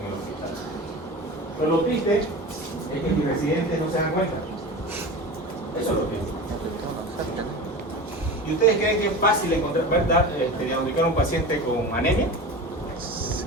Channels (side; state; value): both; normal; correlation 0.31